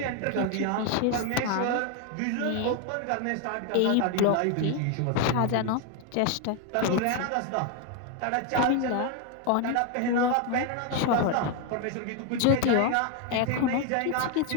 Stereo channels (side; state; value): both; different; correlation 0.01